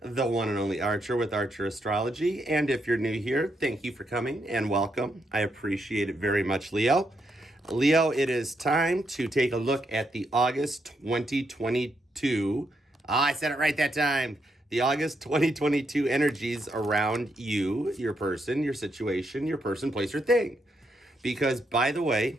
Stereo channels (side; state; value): both; normal; correlation 0.79